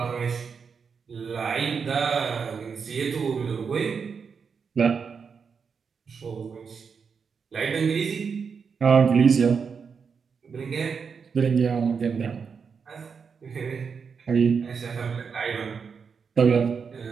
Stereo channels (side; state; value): left; quieter; 5.9 dB